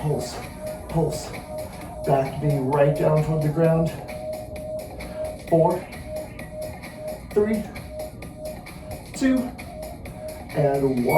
pulse. Back knee right down toward the ground. 4, 3, 2, and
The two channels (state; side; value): identical; both; correlation 1.00